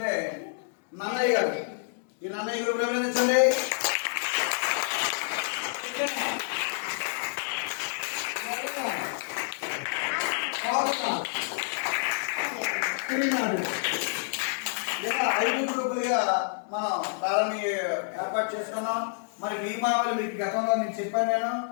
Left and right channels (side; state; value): right; silent; digital silence